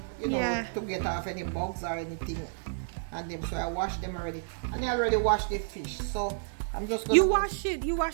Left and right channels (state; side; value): silent; left; digital silence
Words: you know, to get off any bugs or anything on them. So I washed them already, and I already washed the fish. So I'm just gonna wash it